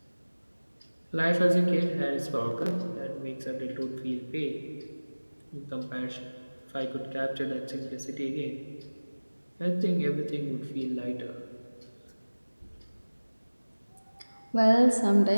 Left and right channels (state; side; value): inverted; both; correlation -1.00